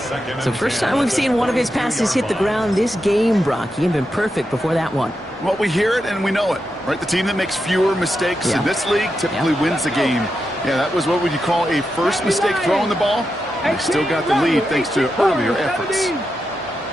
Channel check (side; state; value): both; normal; correlation 0.87